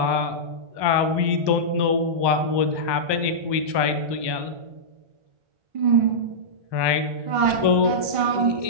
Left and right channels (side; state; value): left; late; 1.2 ms